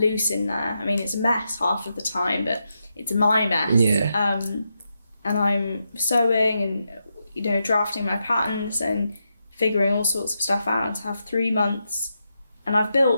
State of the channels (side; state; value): both; inverted; correlation -0.85